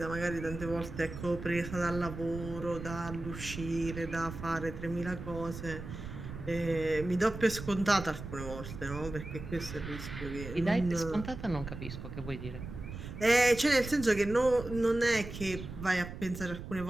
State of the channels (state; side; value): noise; right; rumble, 10 dB below the sound